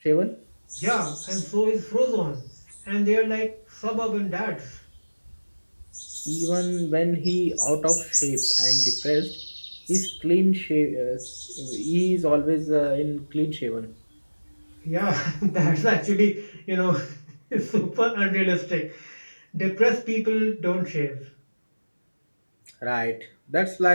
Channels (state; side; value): inverted; both; correlation -1.00